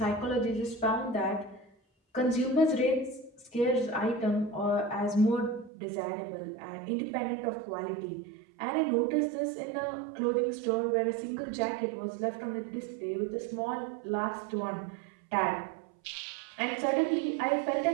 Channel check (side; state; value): left; drops out; at 5.7 s